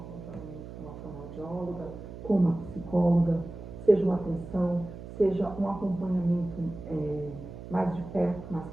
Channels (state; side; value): noise; right; hum, 12 dB below the sound